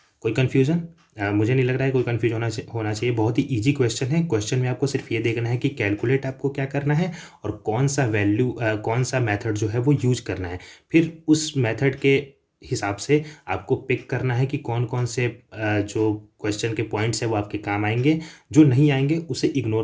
कोई कन्फ्यूज़न मुझे नहीं लग रहा है कोई कन्फ्यूज होना चाहिए। बहुत ही इजी क्वेश्चन है। क्वेश्चन में आपको सिर्फ ये देखना है कि कैलकुलेट आपको क्या करना है और कौन सा वैल्यू कौन सा मेथड जो है वो यूज करना है। फिर उस मेथड के हिसाब से आपको पिक करना है कि कौन कौन से जो क्वेश्चन के पॉइंट्स है वो आपके काम आएंगे, जो नहीं आएंगे उसे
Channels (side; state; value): both; identical; correlation 1.00